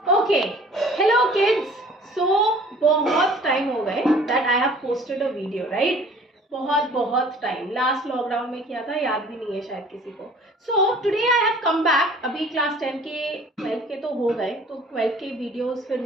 Okay, hello kids. सो बहुत time हो गए that I have posted a video, right? बहुत टाइम, लास्ट लॉकडाउन में किया था, याद भी नहीं है शायद किसी को। So today I have come back. अभी क्लास 10 के 12 के तो हो गए, तो 12 के वीडियोस फिर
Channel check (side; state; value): both; normal; correlation 0.50